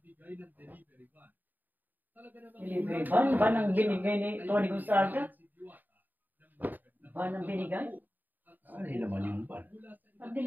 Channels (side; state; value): left; late; 0.088 ms